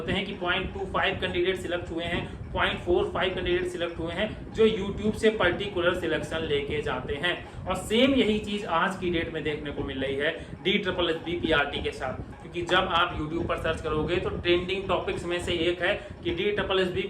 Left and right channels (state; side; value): identical; both; correlation 1.00